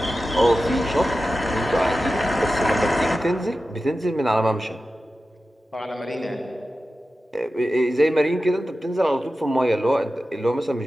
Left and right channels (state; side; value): normal; both; correlation 0.93